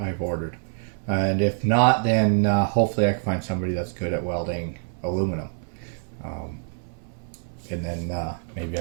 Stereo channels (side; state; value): left; silent; digital silence